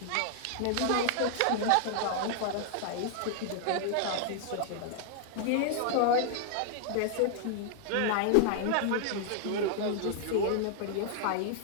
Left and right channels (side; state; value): both; different; correlation -0.01